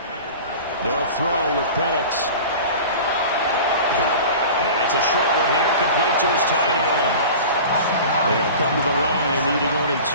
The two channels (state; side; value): inverted; both; correlation -0.37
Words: They'll throw with Penix. It's a short one here, complete to his tight end. They'll come to the line, needing only